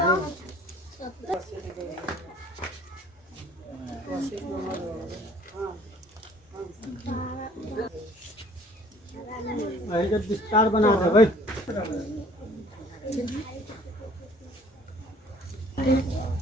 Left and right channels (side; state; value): both; normal; correlation 0.54